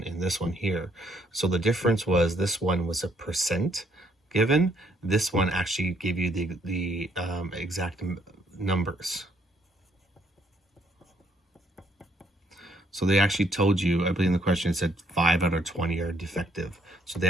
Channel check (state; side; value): normal; both; correlation 0.69